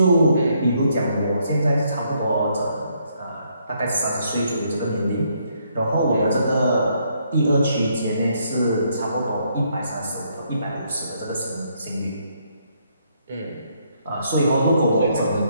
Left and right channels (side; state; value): both; inverted; correlation -0.72